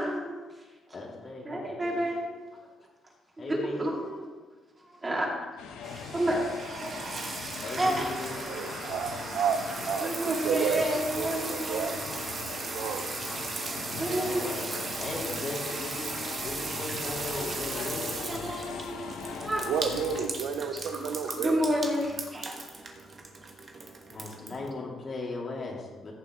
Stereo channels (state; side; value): normal; both; correlation 0.76